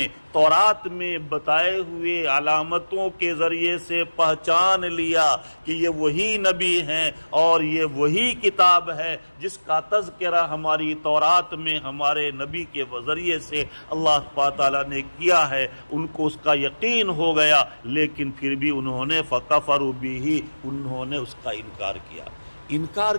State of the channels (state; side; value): inverted; both; correlation -1.00